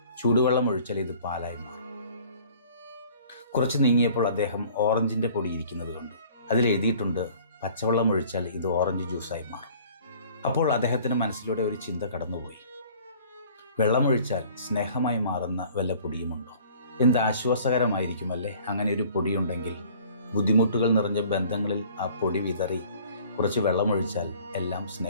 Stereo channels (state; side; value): inverted; both; correlation -0.51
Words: ചൂടുവെള്ളം ഒഴിച്ചാൽ ഇത് പാലായി മാറും. കുറച്ച് നീങ്ങിയപ്പോൾ അദ്ദേഹം ഓറഞ്ചിൻ്റെ പൊടി ഇരിക്കുന്നത് കണ്ടു. അതിൽ എഴുതിയിട്ടുണ്ട്, പച്ചവെള്ളം ഒഴിച്ചാൽ ഇത് ഓറഞ്ച് ജ്യൂസായി മാറും. അപ്പോൾ അദ്ദേഹത്തിന് മനസ്സിലൂടെ ഒരു ചിന്ത കടന്നുപോയി. വെള്ളമൊഴിച്ചാൽ സ്നേഹമായി മാറുന്ന വല്ല പൊടിയുമുണ്ടോ? എന്ത് ആശ്വാസകരമായിരിക്കുമല്ലേ അങ്ങനെ ഒരു പൊടിയുണ്ടെങ്കിൽ. ബുദ്ധിമുട്ടുകൾ നിറഞ്ഞ ബന്ധങ്ങളിൽ ആ പൊടി വിതറി കുറച്ച് വെള്ളമൊഴിച്ചാൽ എല്ലാം